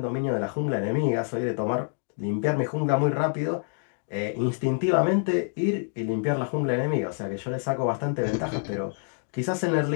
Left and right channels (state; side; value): silent; right; digital silence